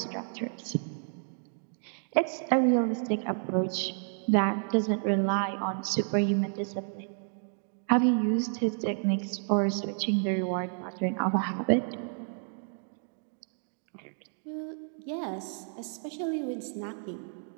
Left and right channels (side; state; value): left; silent; 57 dB below the other